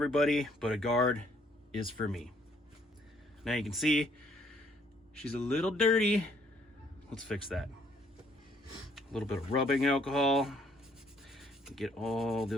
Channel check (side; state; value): both; normal; correlation 0.65